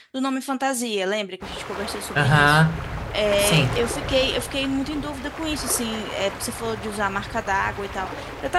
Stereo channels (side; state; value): both; identical; correlation 1.00